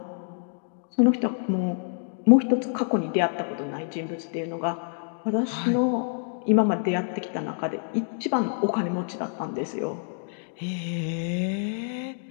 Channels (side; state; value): right; silent; digital silence